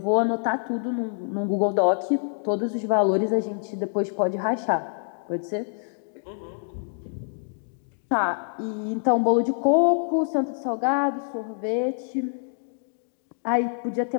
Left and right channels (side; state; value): right; silent; digital silence